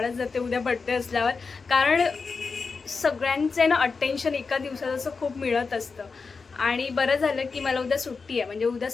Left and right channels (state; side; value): quieter; right; 4.7 dB